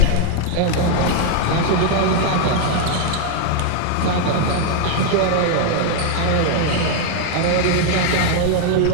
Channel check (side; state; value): both; different; correlation 0.00